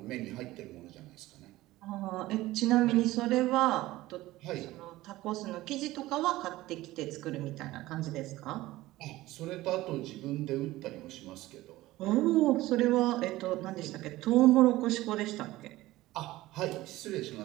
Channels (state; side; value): quieter; left; 17.4 dB